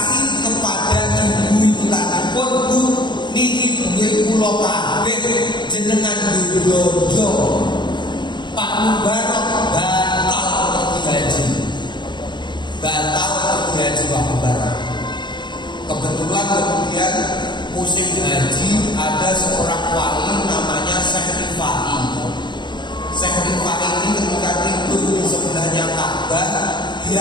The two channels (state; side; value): late; right; 0.22 ms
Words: kepada ibu itu tadi pun, Bu, niki duwe kula kabeh jenengan dodo. Pak Mubarok batal pergi haji. Batal pergi haji Pak Mubarok. Kebetulan kemudian musim haji ada seorang wali namanya Syekh Rifai. Syekh Rifai ini ketika tidur di sebelahnya Ka'bah,